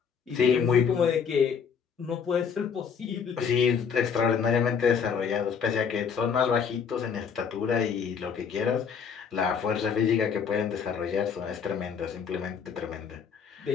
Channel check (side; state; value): right; quieter; 6.6 dB